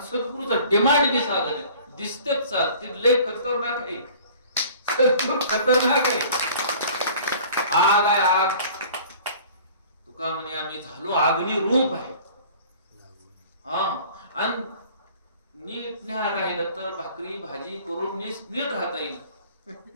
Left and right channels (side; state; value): both; inverted; correlation -0.48